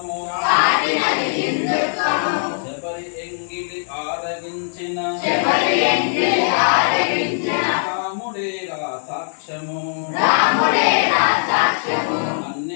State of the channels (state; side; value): silent; right; digital silence